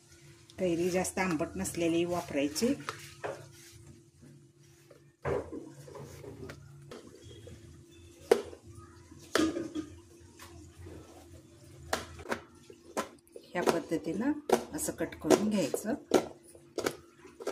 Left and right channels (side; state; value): both; identical; correlation 1.00